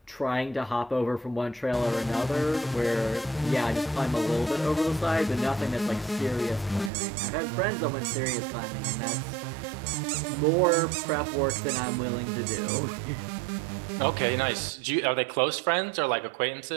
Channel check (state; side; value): drops out; left; at 6.9 s